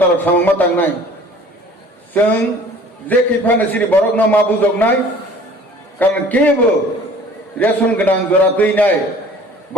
सामंमा थांनाय जों जे खैफानो सिनि बरक ना मा बुजगनाय कारण केबो रेशन गोनां जरा दैनाय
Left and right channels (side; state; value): both; normal; correlation 0.49